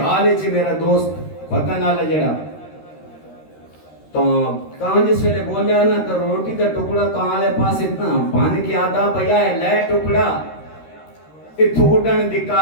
ہے چی میرا دوست پتہ نہ لجڑا تو کہاں جس ویلے بولیا نا تو روٹی کا ٹکڑا کہاں لے پاس اتنا بان کی آدھا بھیا ہے لے ٹکڑا اتھوڑن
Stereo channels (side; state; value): right; late; 13 ms